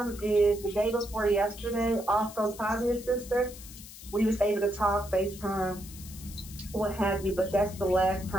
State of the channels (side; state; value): left; noise; hiss, 16 dB below the sound